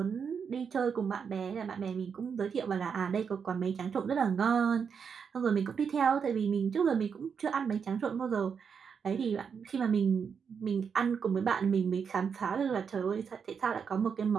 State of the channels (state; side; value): quieter; left; 6.5 dB